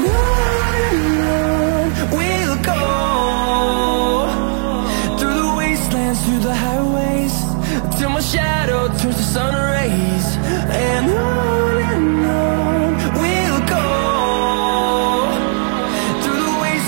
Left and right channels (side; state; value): left; silent; 61 dB below the other